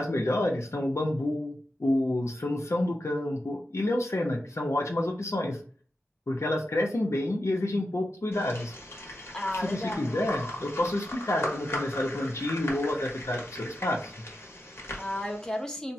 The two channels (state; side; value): normal; both; correlation 0.88